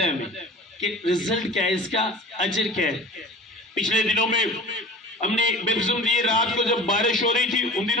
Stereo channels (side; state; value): both; normal; correlation 0.39